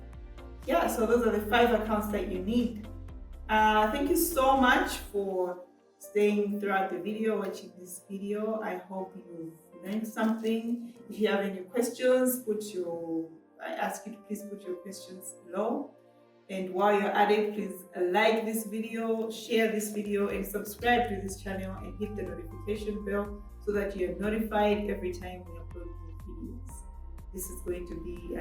So those are the 5 accounts that you need. Thank you so much for staying throughout the video, watching this video. I hope you've learned something. If you have any questions, I ask you to please put your questions below. And while you're at it, please like this video, share this video, and subscribe to this channel and hit the notification bell so that you're notified every time we upload new videos. This is going to be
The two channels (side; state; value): both; identical; correlation 1.00